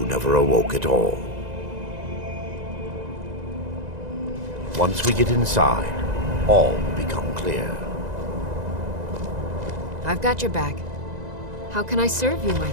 awoke at all. Once we get inside, all will become clear. I've got your back. How can I serve you, my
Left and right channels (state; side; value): late; left; 2.0 ms